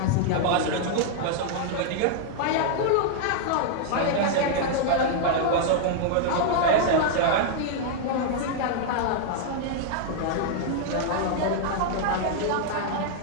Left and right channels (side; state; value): both; different; correlation -0.01